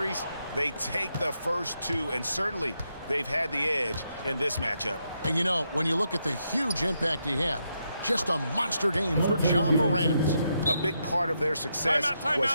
they take the first 2, and certainly they've had the edge in this matchup. And you know, when you look at the huge impact he had, just a monster game for John Morant. A big part of their success was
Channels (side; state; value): both; inverted; correlation -0.81